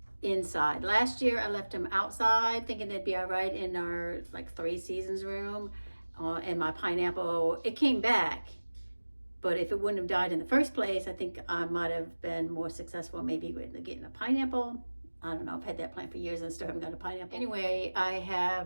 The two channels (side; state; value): both; inverted; correlation -1.00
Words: inside. Last year I left them outside thinking they'd be all right in our like 3 seasons room, and my pineapple, it came back. But if it wouldn't have died in the first place, I think I might have been more successful maybe with getting a pineapple. I don't know, I've had that plant for years and still haven't got a pineapple. Anyway, I